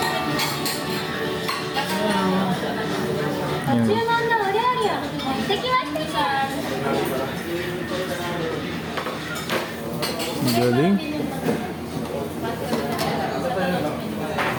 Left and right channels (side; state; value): both; identical; correlation 1.00